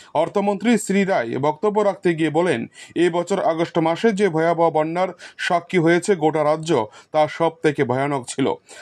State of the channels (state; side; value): identical; both; correlation 1.00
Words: অর্থমন্ত্রী শ্রী রায় বক্তব্য রাখতে গিয়ে বলেন, এই বছর আগস্ট মাসে যে ভয়াবহ বন্যার সাক্ষী হয়েছে গোটা রাজ্য, তা সব থেকে ভয়ানক ছিল।